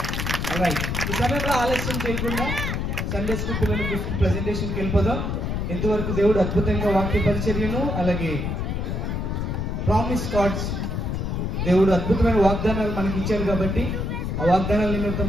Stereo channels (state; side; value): noise; left; rumble, 2 dB below the sound